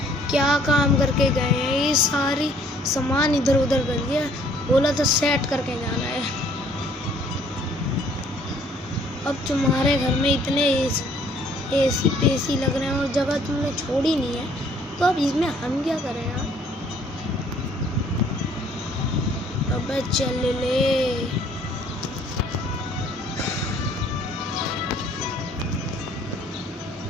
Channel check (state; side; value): normal; both; correlation 0.60